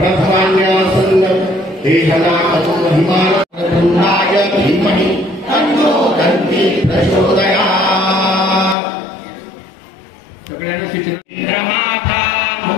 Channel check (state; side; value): drops out; right; at 8.8 s